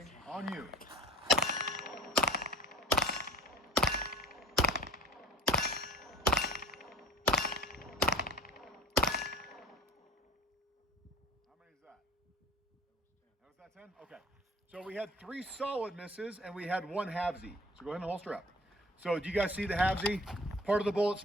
on you. That 10? Okay. So we had 3 solid misses and we had 1 halvesy. So go ahead and holster up. So do you guys see the halvesy? Part of the bullet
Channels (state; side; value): normal; both; correlation 0.39